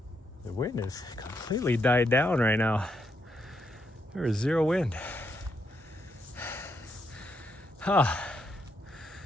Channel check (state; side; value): normal; both; correlation 0.79